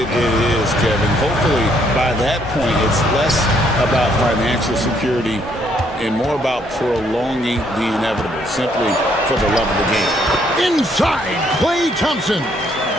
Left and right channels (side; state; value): both; normal; correlation 0.69